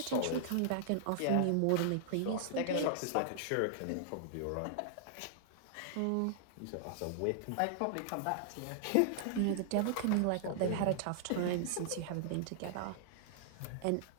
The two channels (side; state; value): both; different; correlation -0.01